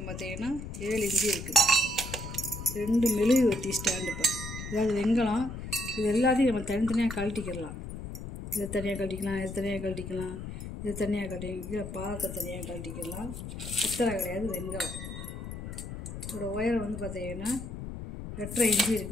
பார்த்திங்கன்னா 7 இன்ச்சு இருக்குது. 2 மெழுகு வெட்டி ஸ்டாண்டுப்பா. அதாவது வெங்கலம் இது எல்லாத்தையும் நம்ம தனித்தனியாக கழட்டிக்கிடலாம். இதை தனியாக கழட்டிக்கலாம், இதை தனியாக கழட்டிக்கலாம், இதை தனியாக கழட்டிக்கலாம், பாகத்தை தனியாக கழட்டிக்கலாம். பித்தளை கிடையாது, வெங்கலம். இதோட ஒயரம் வந்து பார்த்திங்கன்னா 8.5 இன்ச்சு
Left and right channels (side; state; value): left; noise; rumble, 8 dB below the sound